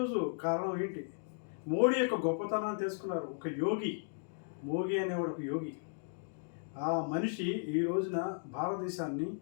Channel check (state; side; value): silent; right; digital silence